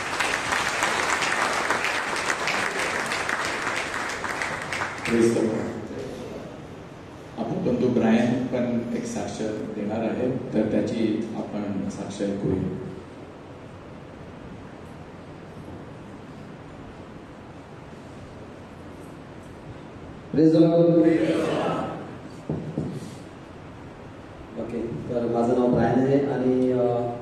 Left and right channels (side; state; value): both; identical; correlation 1.00